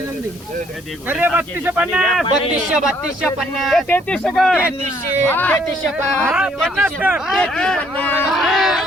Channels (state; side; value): normal; both; correlation 0.65